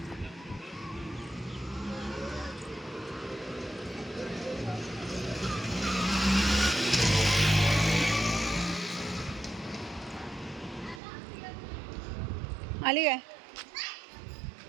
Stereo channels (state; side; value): drops out; left; at 11.0 s